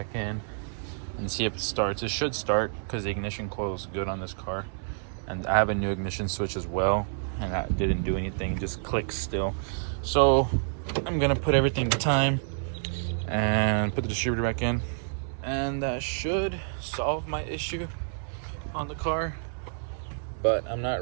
in, and see if it starts. It should start because the ignition coil is good on this car, and I have a new ignition switch as well, and that didn't do anything, just clicks still. So I'm gonna put everything to time and put the distributor back in, and that should solve my issue on the car. But I'm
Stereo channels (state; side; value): silent; left; 59 dB below the other